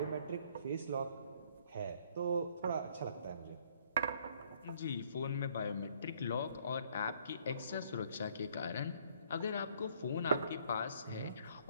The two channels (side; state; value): both; inverted; correlation -0.63